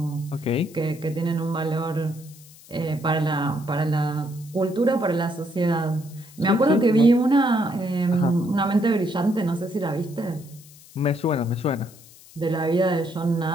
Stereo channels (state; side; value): noise; left; hiss, 22 dB below the sound